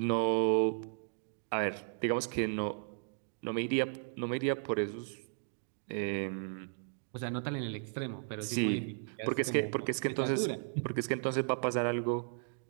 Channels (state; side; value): silent; left; digital silence